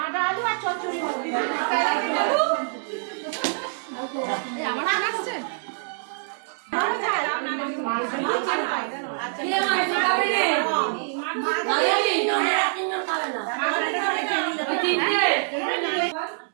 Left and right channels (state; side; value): silent; left; digital silence